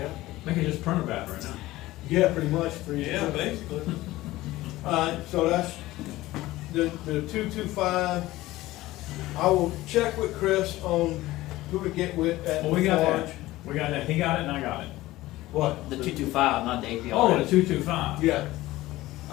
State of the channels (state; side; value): quieter; right; 17.4 dB